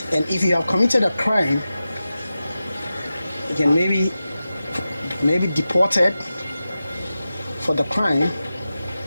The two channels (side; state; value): both; inverted; correlation -0.93